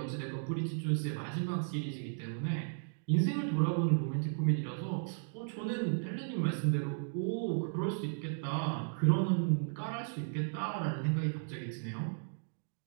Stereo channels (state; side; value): silent; left; digital silence